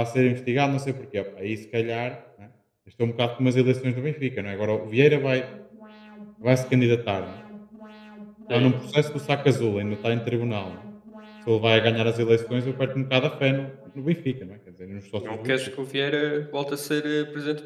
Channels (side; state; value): both; identical; correlation 1.00